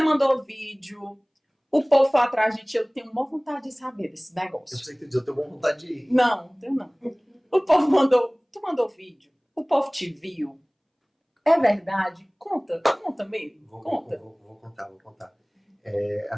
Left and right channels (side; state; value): both; identical; correlation 1.00